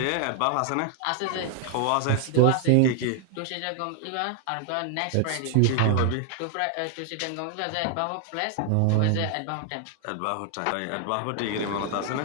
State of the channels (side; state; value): both; different; correlation 0.00